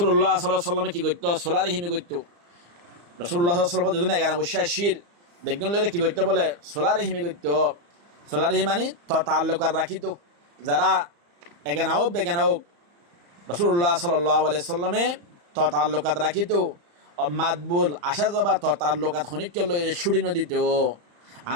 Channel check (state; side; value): late; left; 35 ms